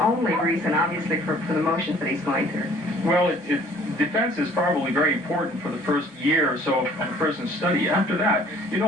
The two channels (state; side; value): normal; both; correlation 0.55